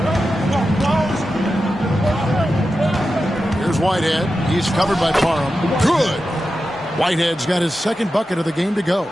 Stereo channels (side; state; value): both; normal; correlation 0.91